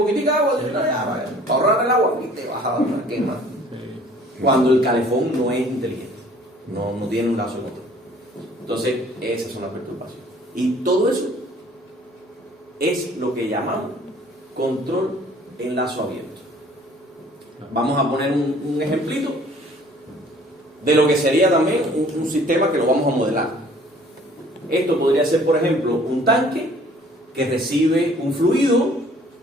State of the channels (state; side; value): normal; both; correlation 0.54